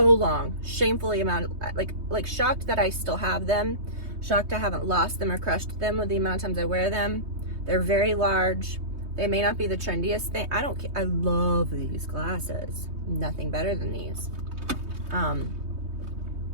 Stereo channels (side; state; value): left; late; 3.2 ms